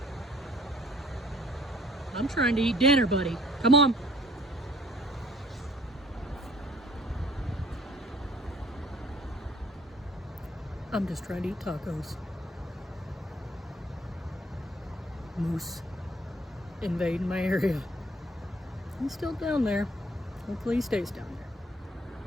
I'm trying to eat dinner, buddy. Come on. I'm just trying to eat tacos. Moose invading my area. He's still down there. Hopefully he stays down there.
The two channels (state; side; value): normal; both; correlation 0.58